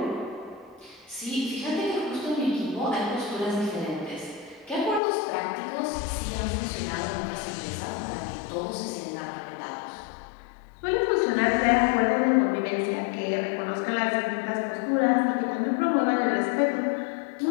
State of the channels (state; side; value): drops out; right; at 5.0 s